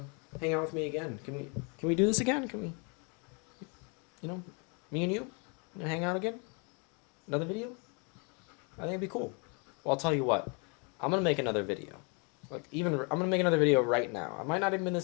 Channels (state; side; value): quieter; right; 34.8 dB